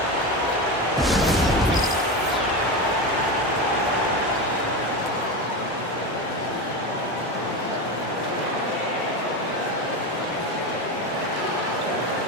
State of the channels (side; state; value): both; normal; correlation 0.20